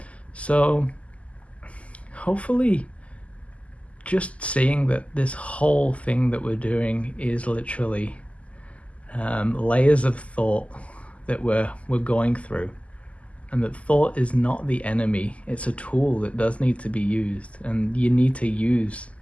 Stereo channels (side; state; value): right; late; 0.065 ms